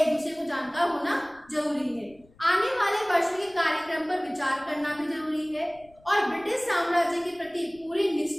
दूसरे को जानकार होना जरूरी है। आने वाले वर्षों के कार्यक्रम पर विचार करना भी जरूरी है और ब्रिटिश साम्राज्य के प्रति पूरी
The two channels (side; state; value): left; noise; rumble, 29 dB below the sound